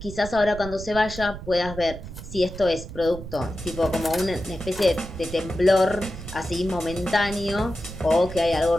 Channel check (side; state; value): right; noise; rumble, 11 dB below the sound